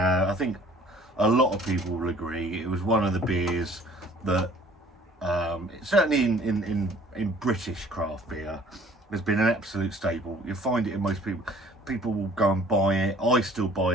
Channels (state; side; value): normal; both; correlation 0.54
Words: think a lot of people will agree it was one of the beers that certainly in British craft beer has been an absolute staple. You'll find it in most people. People will go and buy it. I still buy